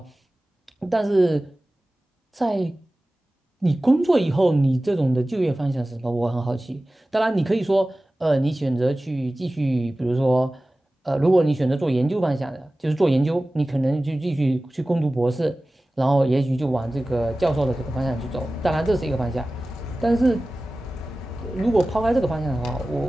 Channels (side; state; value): both; normal; correlation 0.97